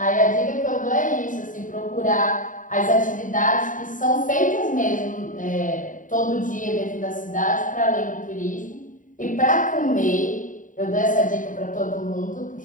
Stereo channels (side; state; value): right; late; 0.38 ms